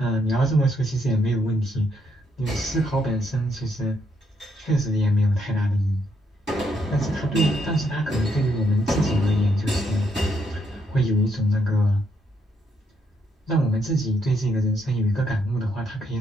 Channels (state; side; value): normal; both; correlation 0.75